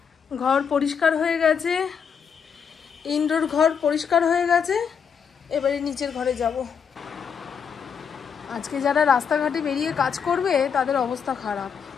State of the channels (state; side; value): quieter; right; 6.9 dB